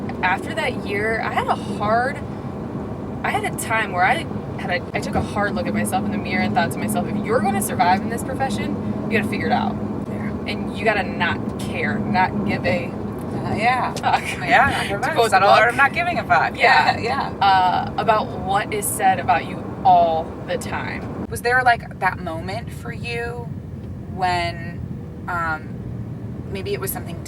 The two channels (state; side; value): identical; both; correlation 1.00